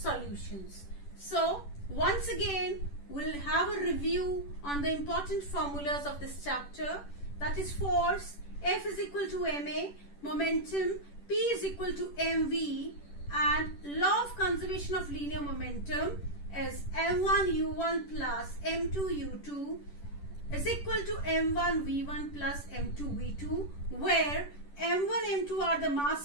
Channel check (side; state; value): right; late; 10 ms